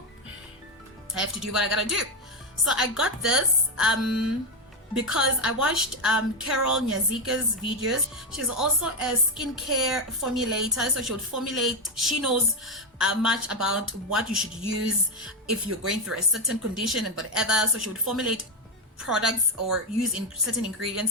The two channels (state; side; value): normal; both; correlation 0.07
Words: I have to do what I gotta do. So I got this because I watched Carol Nyazika's videos. She's also a skincare formulator, so she would formulate. She knows much about what you should use if you're going through a certain condition and whatever. So she would formulate products or use in certain